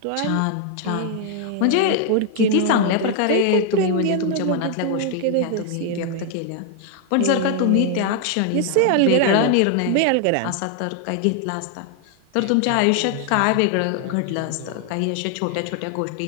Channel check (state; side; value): different; both; correlation 0.00